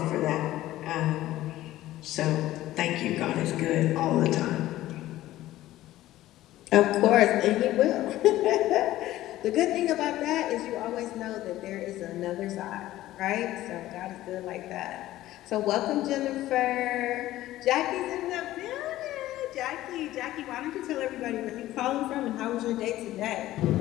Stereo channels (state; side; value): quieter; right; 15.1 dB